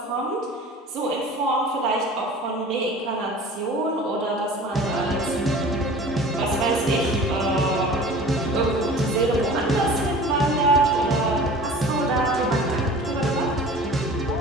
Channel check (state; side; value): normal; both; correlation 0.42